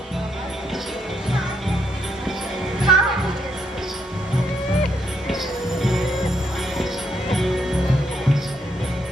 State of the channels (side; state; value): both; normal; correlation 0.76